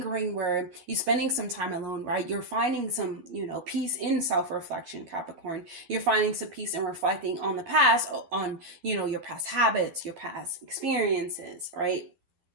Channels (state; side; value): late; left; 12 ms